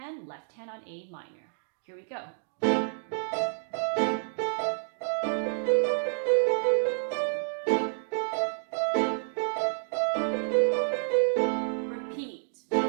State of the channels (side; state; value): left; silent; digital silence